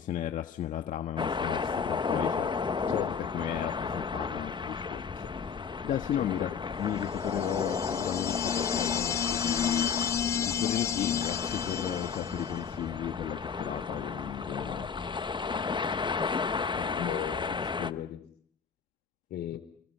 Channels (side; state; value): right; quieter; 6.9 dB